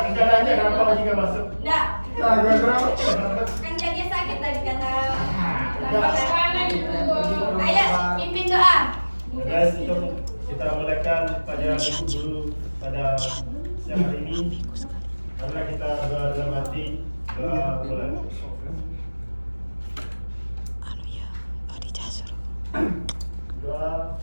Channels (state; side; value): inverted; both; correlation -1.00